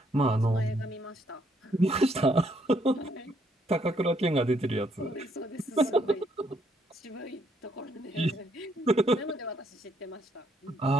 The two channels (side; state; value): both; normal; correlation 0.71